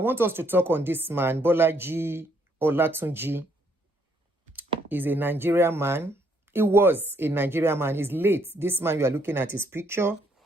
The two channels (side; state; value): both; normal; correlation 0.70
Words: us to talk on this man, Bolaji Olatunji. He's a Nigerian man. He was a Nigerian man. He's late. This man, you are looking at his picture.